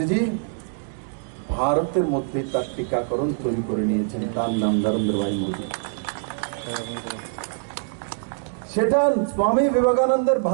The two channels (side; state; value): left; silent; digital silence